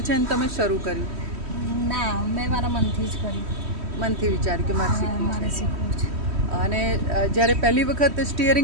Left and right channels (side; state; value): left; late; 3.1 ms